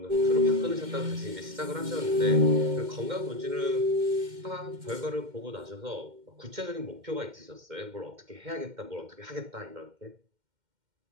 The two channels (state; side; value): late; left; 2.1 ms